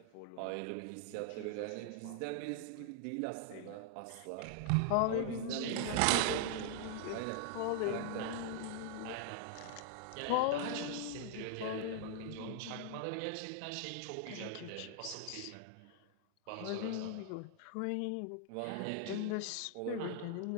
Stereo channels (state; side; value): different; both; correlation -0.01